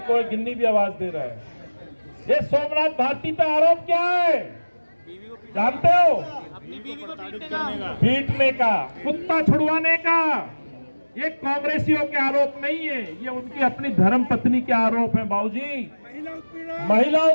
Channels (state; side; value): inverted; both; correlation -1.00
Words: है, गिन्नी भी आवाज दे रहा है। ये सोमनाथ भारती पे आरोप क्या है जानते हो? अपनी बीवी को पीटने का, कुत्ता छुड़वाने का। ये कांग्रेसियों के आरोप नहीं है, ये उनकी अपनी धर्म पत्नी के आरोप है बाबूजी। महिला